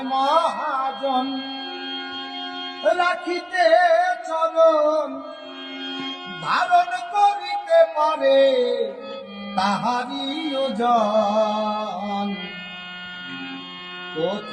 মহাজন রাখিতে চরণ, ধারণ করিতে পারে তাহারি ওজন।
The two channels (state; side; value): identical; both; correlation 1.00